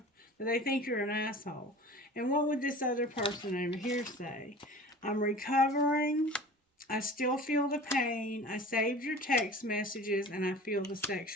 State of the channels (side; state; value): both; normal; correlation 0.40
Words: they think you're an asshole. And what would this other person over here say? I'm recovering. I still feel the pain. I saved your text messages and I feel the